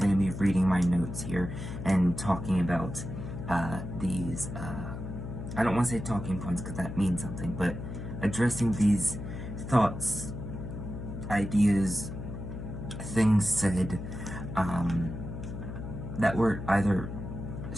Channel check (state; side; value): noise; left; hum, 7 dB below the sound